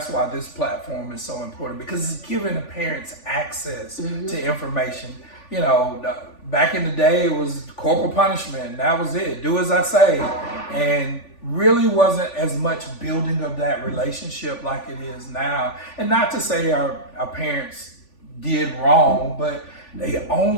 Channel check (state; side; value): late; right; 3.5 ms